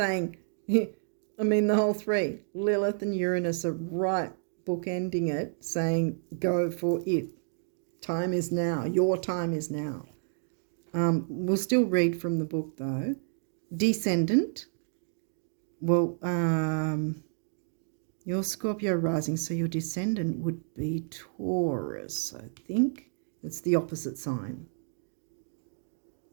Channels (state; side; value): silent; left; digital silence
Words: the whole three, Lilith and Uranus are right bookending it, saying go for it. Time is now. Your time is now. We'll still read from the book though. Descendant. Well, your Scorpio rising, so your descendant would be Taurus, I think. It's the opposite sign.